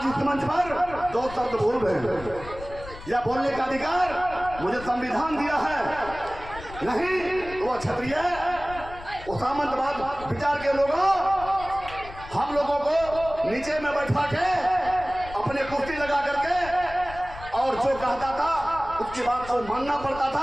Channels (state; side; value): noise; left; rumble, 15 dB below the sound